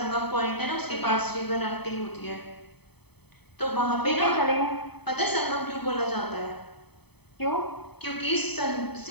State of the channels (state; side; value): late; right; 0.98 ms